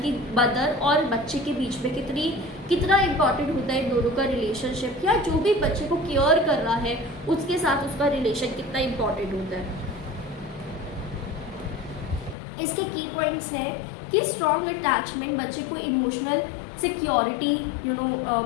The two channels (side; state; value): right; drops out; at 12.4 s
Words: मदर और बच्चे के बीच में कितना इम्पॉर्टेंट होता है इन दोनों का रिलेशनशिप, या जो भी बच्चे को केयर कर रहा है उसके साथ उसका रिलेशन कितना इम्पॉर्टेंट होता है। इसके की पॉइंट्स है कि स्ट्रॉन्ग अटैचमेंट बच्चे को इमोशनल सिक्योरिटी